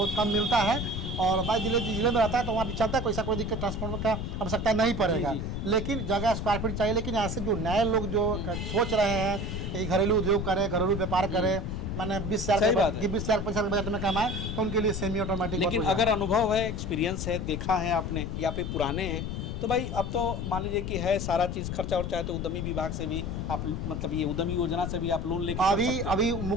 कम मिलता है, और भाई जिले में रहता है तो वहाँ भी चलता है, कोई दिक्कत ट्रांसफार्मर का आवश्यकता नहीं पड़ेगा। लेकिन जगह स्क्वायर फीट चाहिए। लेकिन ऐसे जो नए लोग जो सोच रहे हैं कि घरेलू उद्योग करें, घरेलू व्यापार करें, मैंने 20,000 की 20,000 25,000 बजट में कमाए, तो उनके लिए सेमी ऑटोमेटिक। लेकिन अगर अनुभव है, एक्सपीरियंस है, देखा है आपने, या फिर पुराने हैं, तो भाई अब तो मान लीजिए कि है सारा चीज़ खर्चा और चाहे तो उद्यमी विभाग से भी आप, मतलब ये उद्यमी योजना से भी आप लोन लेकर अभी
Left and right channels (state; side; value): noise; left; rumble, 3 dB below the sound